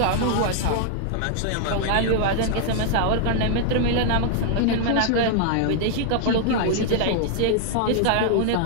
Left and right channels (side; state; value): both; different; correlation -0.01